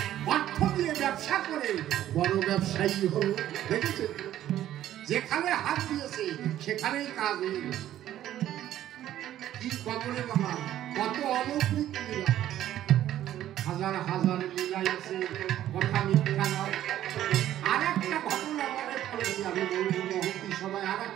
অর্থ দিয়ে ব্যবসা করে বড় ব্যবসায়ী হল। দেখেছে, যেখানে হাত দিয়েছে সেখানেই কাজ হয়ে গেছে। কি কবরে বাবা, কত অলৌকিক লীলা, হাজার হাজার লীলা আছে, কথা মিথ্যা নয়। আর একটা ঘটনা মনে পড়েছে, আমি বলবো মহতি সবাই, আর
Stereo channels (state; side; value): quieter; left; 12.4 dB